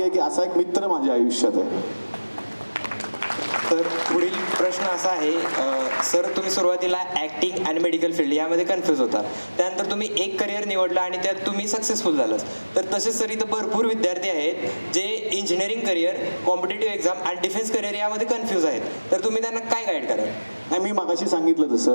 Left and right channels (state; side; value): inverted; both; correlation -1.00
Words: आहे की असा एक मित्र माझ्या आयुष्यात आहे. तर पुढील प्रश्न असा आहे, सर तुम्ही सुरुवातीला ऍक्टिंग आणि मेडिकल फील्ड यामध्ये कन्फ्यूज होता, त्यानंतर तुम्ही एक करिअर निवडलं आणि त्यात तुम्ही सक्सेसफुल झालात. तर तसेच सर इथं भरपूर विद्यार्थी आहेत जे इंजिनिअरिंग करिअर, कॉम्पिटेटिव्ह एक्झाम आणि डिफेन्स करिअर यामध्ये कन्फ्यूज आहेत. तर तुम्ही त्यांना काय गाईड कराल. नाही, मी मगाशी सांगितलं